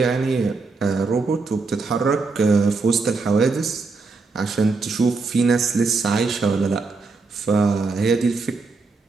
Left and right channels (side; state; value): left; quieter; 4.1 dB